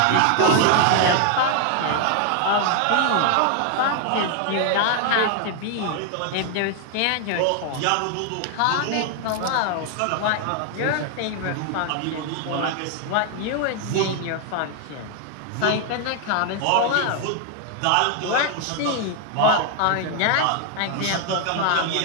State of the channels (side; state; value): both; different; correlation 0.00